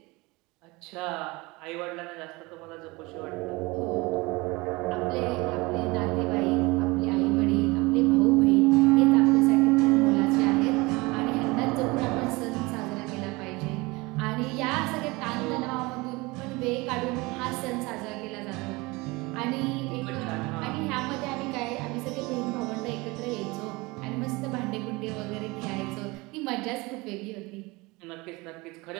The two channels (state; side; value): quieter; left; 23.8 dB